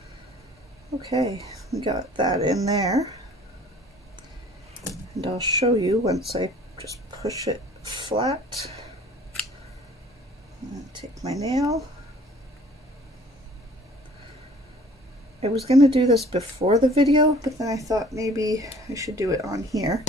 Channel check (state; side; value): normal; both; correlation 0.52